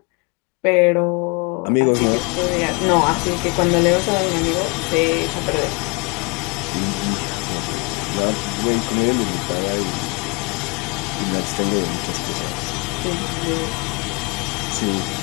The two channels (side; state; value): right; quieter; 29.7 dB